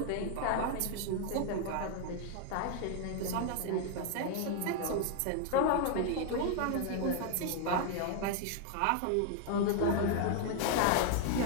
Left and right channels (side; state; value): both; different; correlation 0.00